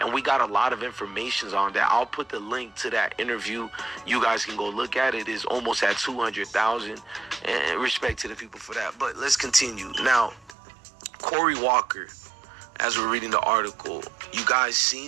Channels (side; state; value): left; drops out; at 10.6 s